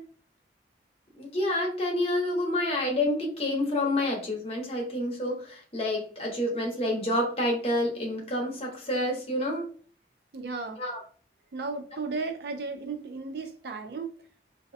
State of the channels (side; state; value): both; normal; correlation 0.34